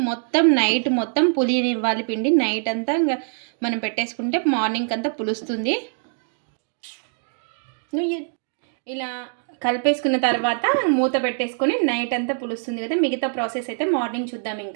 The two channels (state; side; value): silent; left; digital silence